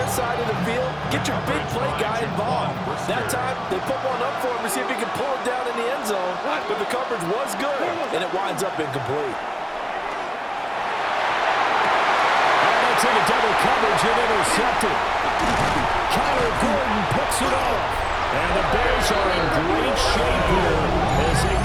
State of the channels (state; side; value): identical; both; correlation 1.00